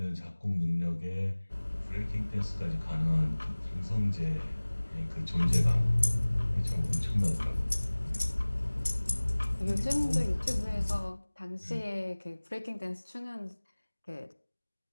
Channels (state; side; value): inverted; both; correlation -1.00